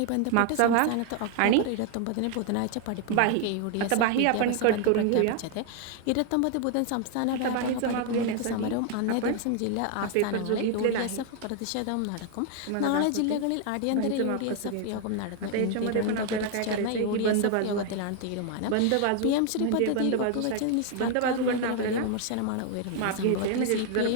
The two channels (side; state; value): both; different; correlation 0.00